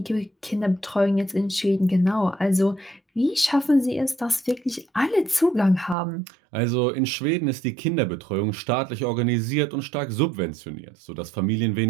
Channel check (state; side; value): drops out; left; at 6.0 s